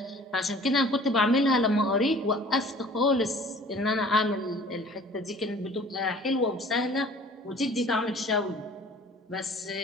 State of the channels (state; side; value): normal; both; correlation 0.49